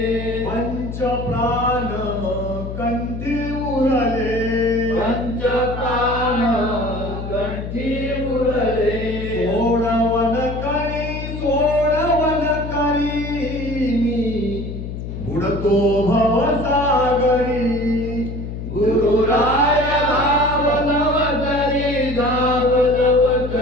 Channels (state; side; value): noise; left; hum, 7 dB below the sound